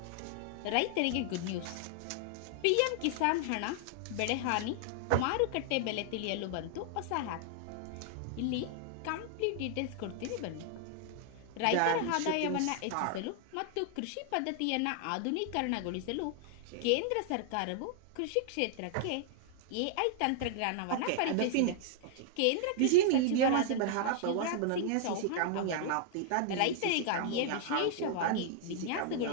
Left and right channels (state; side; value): different; both; correlation 0.00